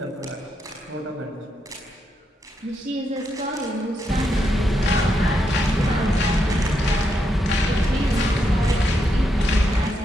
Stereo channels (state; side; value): normal; both; correlation 0.81